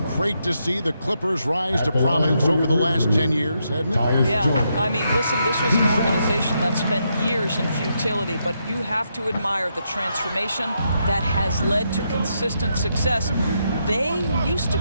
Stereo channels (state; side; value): inverted; both; correlation -0.80